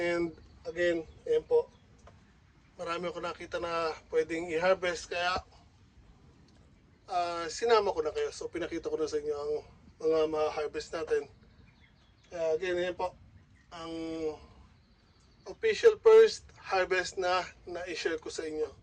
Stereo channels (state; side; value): identical; both; correlation 1.00